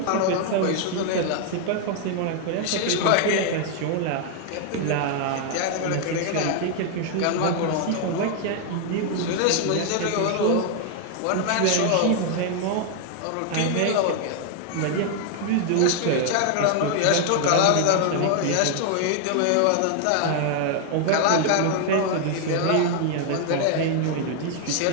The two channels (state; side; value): different; both; correlation 0.00